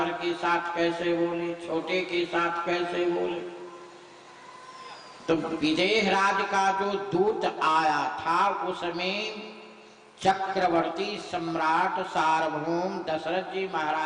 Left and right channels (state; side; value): identical; both; correlation 1.00